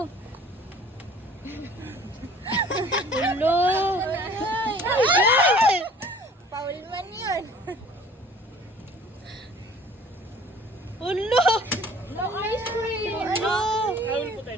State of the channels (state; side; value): normal; both; correlation 0.50